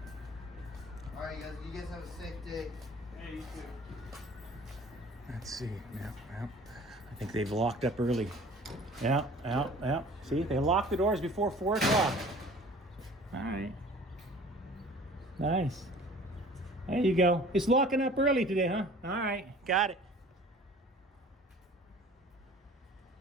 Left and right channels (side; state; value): both; normal; correlation 0.47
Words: All right, you guys have a safe day. Hey, you too. Let's see. Yeah. I think they've locked up early. Yeah. See, they locked the doors before 4 o'clock. All right. Nice. There you go. It's locking up early today, huh? All right. Got it.